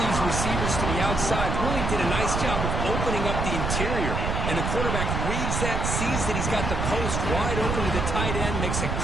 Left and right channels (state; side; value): noise; right; rumble, 1 dB below the sound